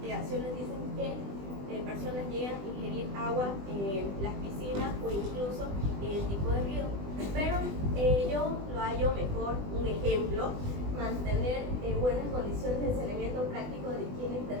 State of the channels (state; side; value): late; left; 20 ms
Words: dicen que personas llegan a ingerir agua en las piscinas o incluso en el tipo de río. Pero yo lo hallo mejor, un ejemplo, mantener buenas condiciones de saneamiento práctico de higiene e